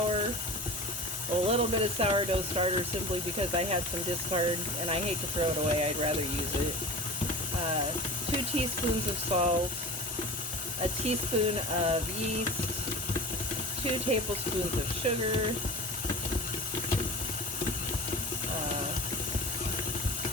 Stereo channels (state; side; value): normal; both; correlation 0.35